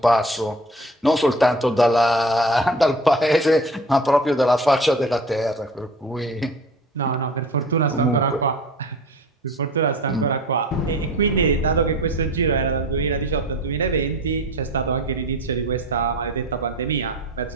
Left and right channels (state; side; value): normal; both; correlation 0.41